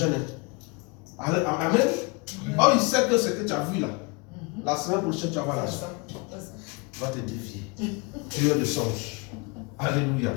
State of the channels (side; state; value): right; quieter; 30.1 dB